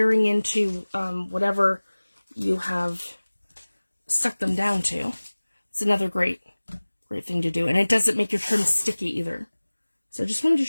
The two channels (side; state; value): both; inverted; correlation -1.00